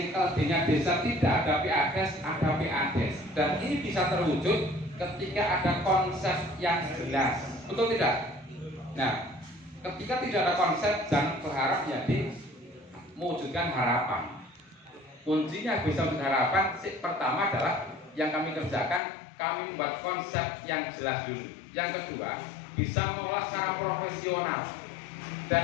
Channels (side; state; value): right; drops out; at 19.0 s